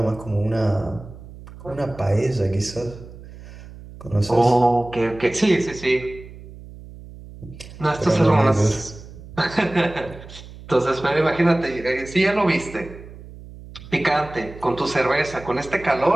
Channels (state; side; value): noise; right; hum, 16 dB below the sound